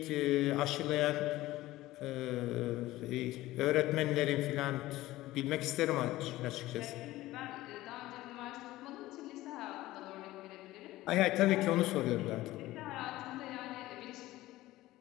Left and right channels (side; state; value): right; quieter; 17.0 dB